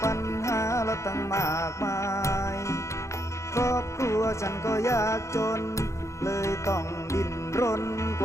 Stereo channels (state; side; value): late; right; 0.14 ms